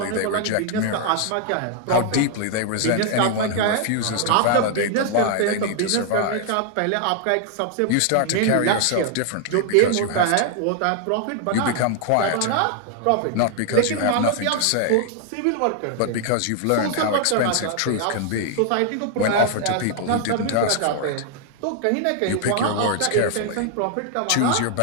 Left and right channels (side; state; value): both; different; correlation 0.00